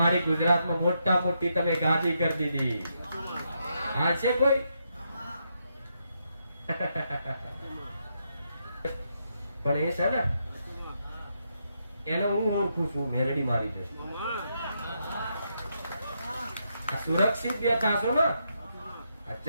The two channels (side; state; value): both; inverted; correlation -0.80